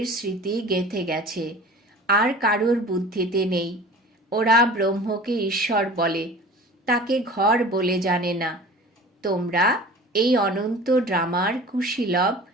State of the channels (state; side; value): normal; both; correlation 0.41